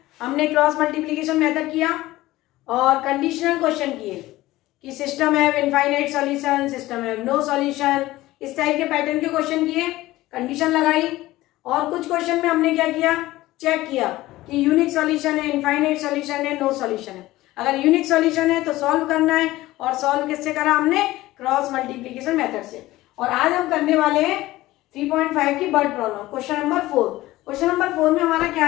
हमने क्रॉस मल्टीप्लिकेशन मेथड किया और कंडीशनल क्वेश्चन किए कि system have infinite solution, system have no solution, इस टाइप के पैटर्न के क्वेश्चन किए, कंडीशन लगाई। और कुछ क्वेश्चन में हमने क्या किया, चेक किया कि यूनिक सॉल्यूशन है, इनफाइनाइट सॉल्यूशन है, नो सॉल्यूशन है। अगर यूनिक सॉल्यूशन है तो सॉल्व करना है, और सॉल्व किससे करा हमने, क्रॉस मल्टीप्लिकेशन मेथड से। और आज हम करने वाले हैं 3.5 की word problem, question number 4। Question number 4 में हमारा क्या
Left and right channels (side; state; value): right; quieter; 17.3 dB